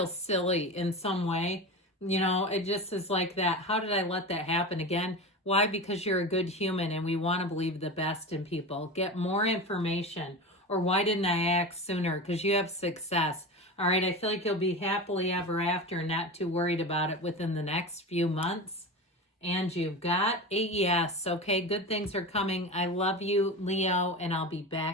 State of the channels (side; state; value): both; normal; correlation 0.26